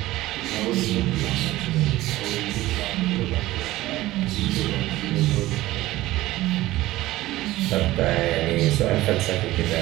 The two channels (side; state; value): left; quieter; 16.8 dB